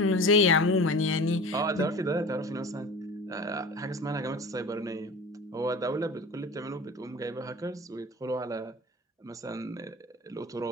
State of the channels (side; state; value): both; normal; correlation 0.36